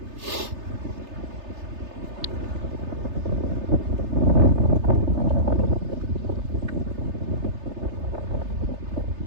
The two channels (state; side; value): late; left; 3.3 ms